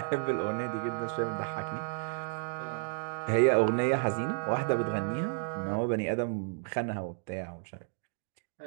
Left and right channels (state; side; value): silent; left; digital silence